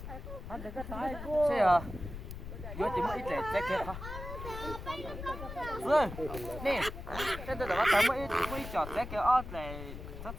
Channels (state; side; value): noise; left; rumble, 9 dB below the sound